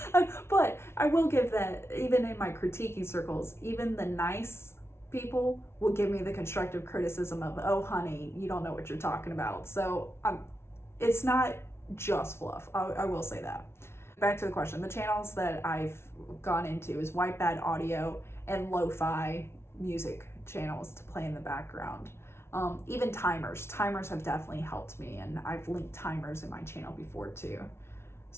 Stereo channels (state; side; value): late; right; 0.12 ms